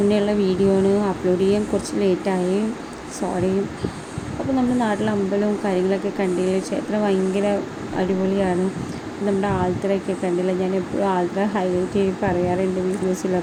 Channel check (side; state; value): both; identical; correlation 1.00